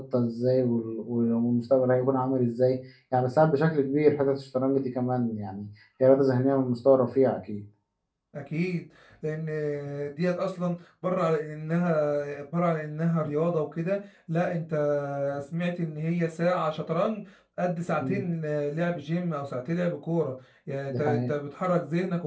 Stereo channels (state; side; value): identical; both; correlation 1.00